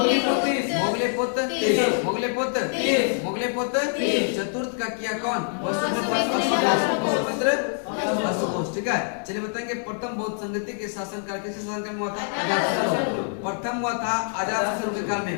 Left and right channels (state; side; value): silent; right; 60 dB below the other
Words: मोगले पुत्र चतुर्थ का किया कौन वसुमित्र अश्वघोष ठीक है। चलिए बताएंगे प्रथम बौद्ध संगति के शासनकाल किसके शासनकाल में हुआ था प्रथम हुआ था अजातशत्रु के काल में